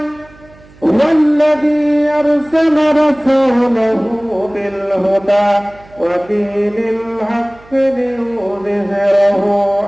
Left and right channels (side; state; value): right; noise; hum, 25 dB below the sound